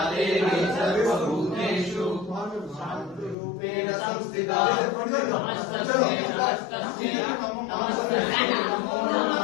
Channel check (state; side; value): drops out; right; at 3.4 s